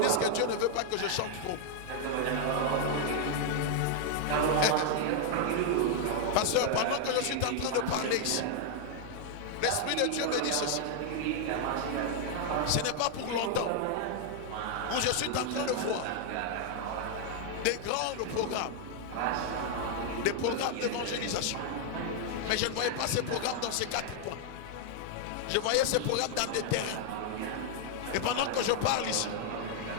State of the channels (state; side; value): different; both; correlation 0.00